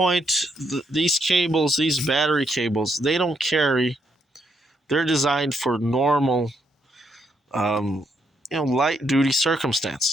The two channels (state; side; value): normal; both; correlation 0.76